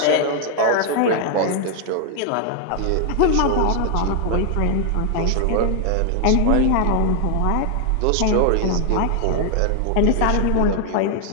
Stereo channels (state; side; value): different; both; correlation 0.00